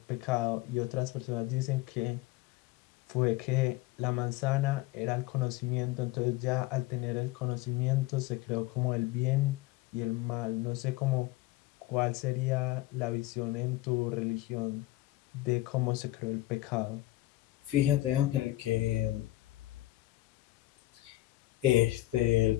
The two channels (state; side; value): quieter; right; 17.2 dB